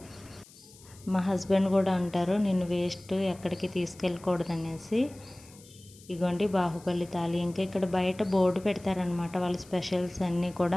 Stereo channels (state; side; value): noise; left; hiss, 23 dB below the sound